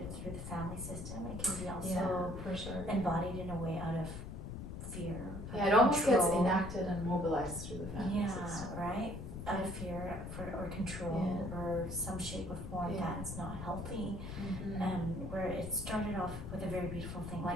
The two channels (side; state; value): left; noise; rumble, 8 dB below the sound